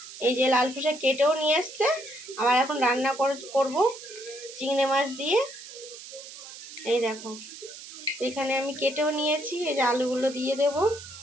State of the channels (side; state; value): right; noise; hiss, 14 dB below the sound